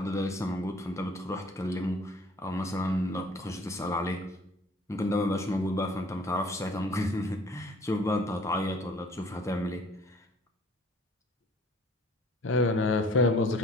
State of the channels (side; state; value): both; normal; correlation 0.54